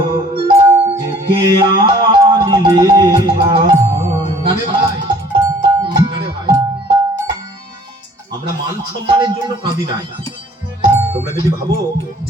ডেকে আনলি ভাই? না রে ভাই, না রে ভাই, আমরা মান সম্মানের জন্য কাঁদি নাই। তোমরা যদি ভাবো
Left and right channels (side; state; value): both; normal; correlation 0.53